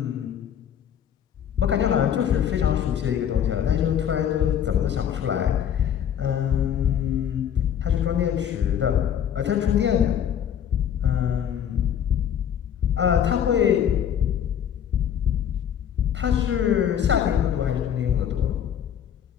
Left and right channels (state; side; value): quieter; right; 9.1 dB